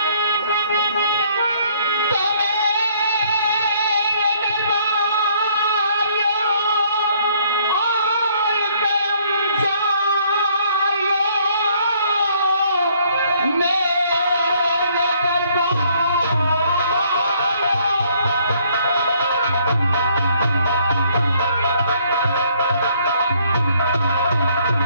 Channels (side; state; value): both; inverted; correlation -0.64